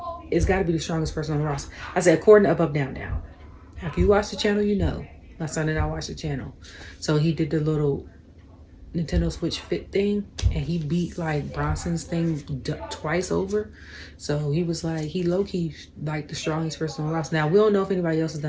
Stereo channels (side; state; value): both; identical; correlation 1.00